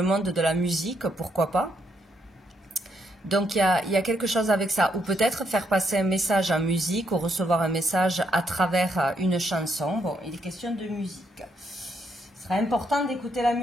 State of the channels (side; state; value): both; normal; correlation 0.75